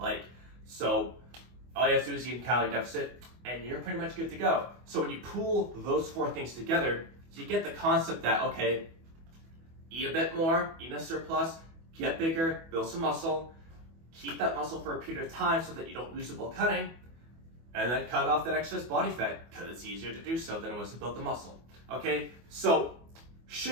So all you have to do is eat in calorie deficit and you're pretty much good to go. So when you pool those 4 things together, you get the concept that, okay, eat a bit more, eat in a surplus, get bigger, build some muscle, keep that muscle for a period of time so that you don't lose it while cutting, and then cut off that excess body fat because it's easier to do so than it was to build the muscle. Okay, so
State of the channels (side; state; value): left; late; 24 ms